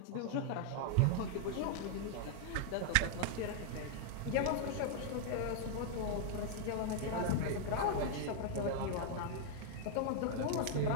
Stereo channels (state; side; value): different; both; correlation -0.01